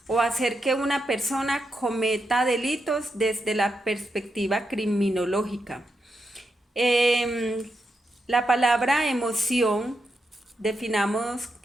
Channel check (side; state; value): both; normal; correlation 0.85